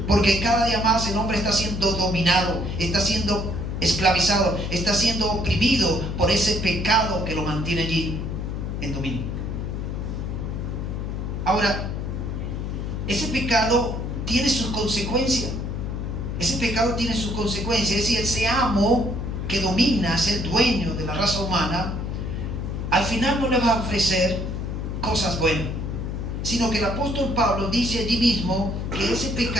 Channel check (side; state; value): left; noise; hum, 3 dB below the sound